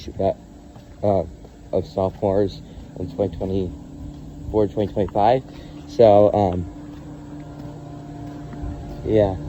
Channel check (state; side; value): identical; both; correlation 1.00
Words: that of sophomores in 2024, 2025. So yeah.